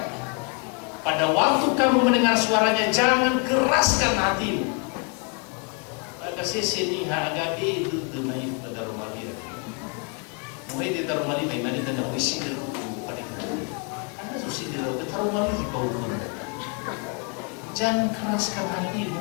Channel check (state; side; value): quieter; right; 35.1 dB